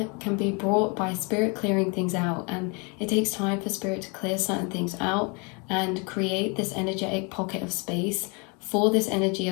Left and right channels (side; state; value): right; quieter; 32.0 dB